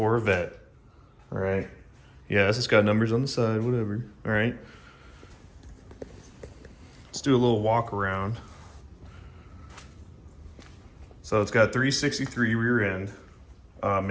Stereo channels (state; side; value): identical; both; correlation 1.00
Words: All right. Yes, it's got numbers on the side, whatever. All right. Let's do a little walk around. So it's got 363 rear end,